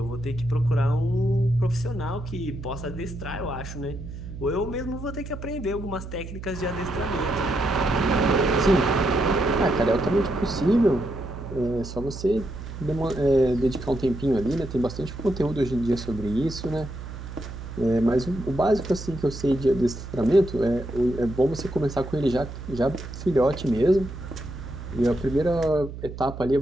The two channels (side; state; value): right; noise; hum, 10 dB below the sound